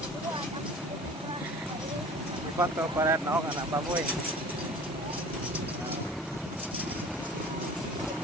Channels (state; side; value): normal; both; correlation 0.43